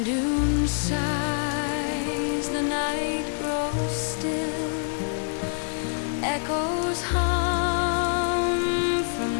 dune sighs, the night grows still. Echoes hum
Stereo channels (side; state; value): right; silent; digital silence